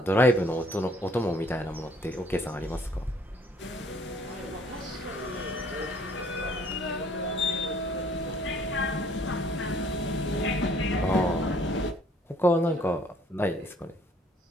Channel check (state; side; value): normal; both; correlation 0.60